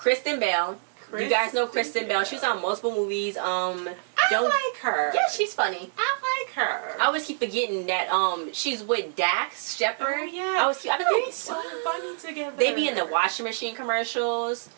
Bell. You guys know Kristen Bell. She was on multiple movies. I like her. Yeah, she's funny. I like her. I always keep forgetting that she's with Dax Shepard. Oh, yeah. They're so funny together. They be in the washing machine commercials.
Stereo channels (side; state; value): left; silent; digital silence